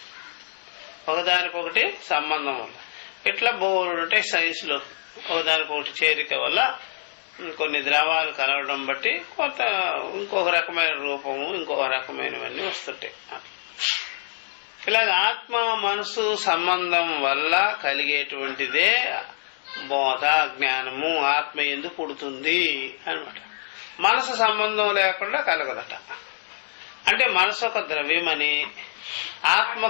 ఒకదానికొకటి సంబంధం వల్ల. ఇట్లా బోర్డు ఉంటాయి సైన్స్ లో, ఒకదానికొకటి చేరిక వల్ల కొన్ని ద్రవాలు కలవడం బట్టి కొంత ఇంకొక రకమైన రూపము ఇంకొక రకమైనవన్నీ వస్తుంటాయి. ఇలాగ ఆత్మ మనసు సంబంధం వల్ల కలిగేటువంటిదే బోధ జ్ఞానము. ఆత్మ ఎందుకు పుడుతుంది అనమాట. మనసు సంబంధం లేకుండా కలగదట. అంటే మనసు ఒక ద్రవ్యమని, ఆత్మ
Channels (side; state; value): right; silent; digital silence